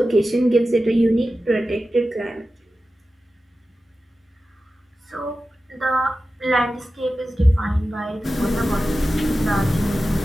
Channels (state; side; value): normal; both; correlation 0.94